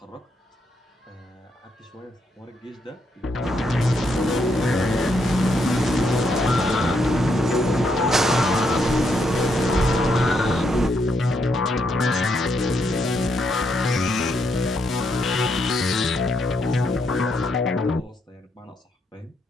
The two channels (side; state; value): both; normal; correlation 0.77